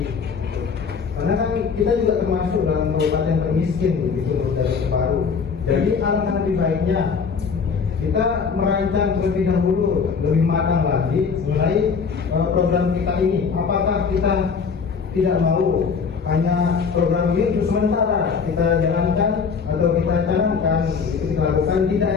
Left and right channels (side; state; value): right; quieter; 5.7 dB